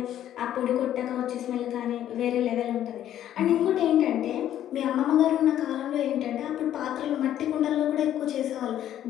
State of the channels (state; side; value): quieter; right; 11.4 dB